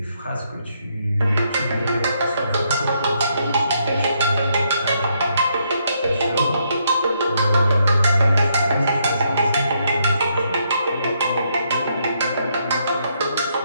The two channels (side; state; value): both; inverted; correlation -0.75